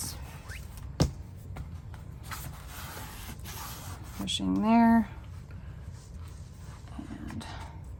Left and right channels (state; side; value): identical; both; correlation 1.00